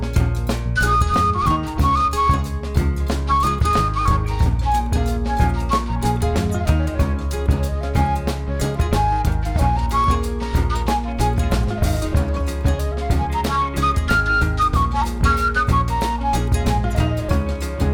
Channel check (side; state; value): both; identical; correlation 1.00